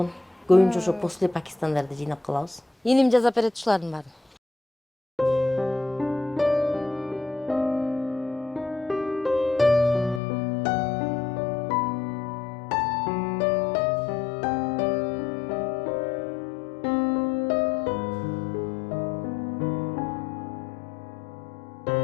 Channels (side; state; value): right; drops out; at 10.2 s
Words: Көбүнчө ошо после Пакистандарды жыйнап калабыз. Энем жазап берет ушулардын баарын.